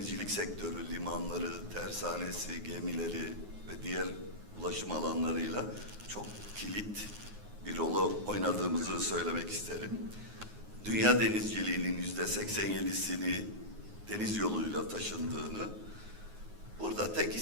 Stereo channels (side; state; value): left; late; 9.5 ms